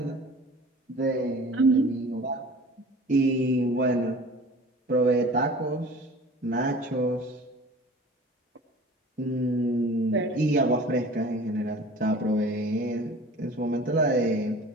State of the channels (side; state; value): both; normal; correlation 0.43